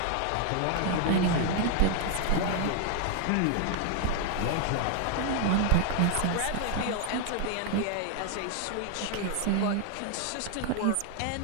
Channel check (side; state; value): both; different; correlation 0.00